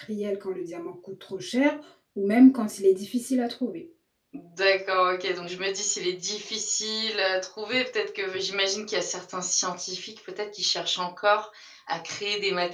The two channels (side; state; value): both; identical; correlation 1.00